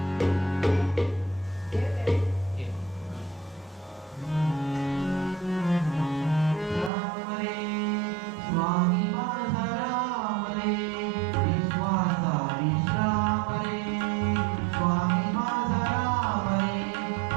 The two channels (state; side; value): drops out; left; at 6.9 s